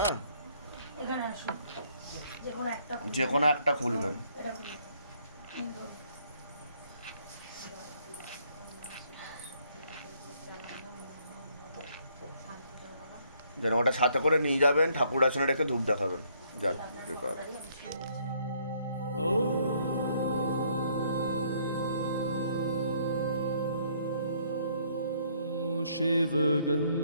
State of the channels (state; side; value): inverted; both; correlation -0.67